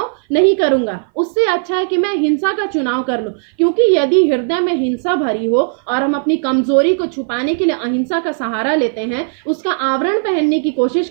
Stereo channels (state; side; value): silent; left; 60 dB below the other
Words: नहीं करूंगा। उससे अच्छा है कि मैं हिंसा का चुनाव कर लूं, क्योंकि यदि हृदय में हिंसा भरी हो और हम अपनी कमजोरी को छुपाने के लिए अहिंसा का सहारा लेते हैं, उसका आवरण पहनने की कोशिश